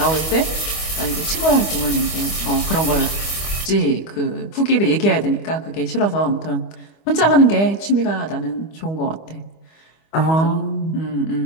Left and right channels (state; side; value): late; right; 25 ms